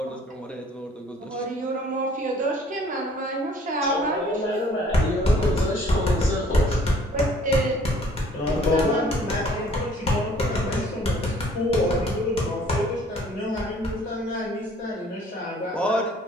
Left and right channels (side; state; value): both; normal; correlation 0.56